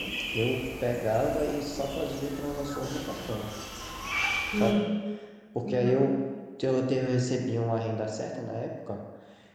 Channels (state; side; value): identical; both; correlation 1.00